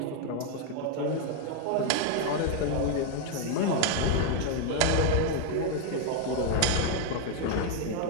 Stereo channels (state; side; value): different; both; correlation 0.01